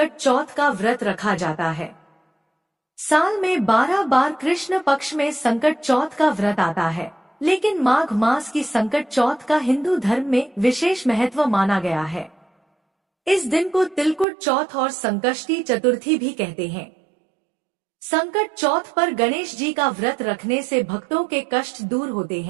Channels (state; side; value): drops out; left; at 14.2 s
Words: चौथ का व्रत रखा जाता है। साल में 12 बार कृष्ण पक्ष में संकट चौथ का व्रत आता है, लेकिन माघ मास की संकट चौथ का हिंदू धर्म में विशेष महत्व माना गया है। इस दिन को तिलकुट चौथ और संकष्टी चतुर्थी भी कहते हैं। संकट चौथ पर गणेश जी का व्रत रखने से भक्तों के कष्ट दूर होते